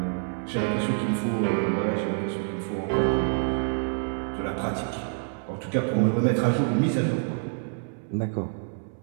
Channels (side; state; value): left; silent; 60 dB below the other